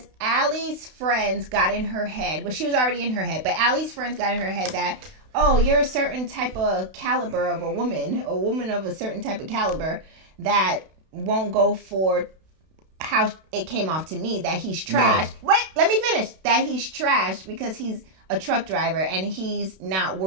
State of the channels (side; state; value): left; late; 32 ms